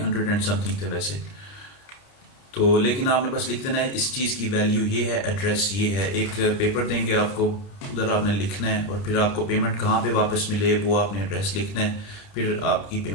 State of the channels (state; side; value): late; right; 30 ms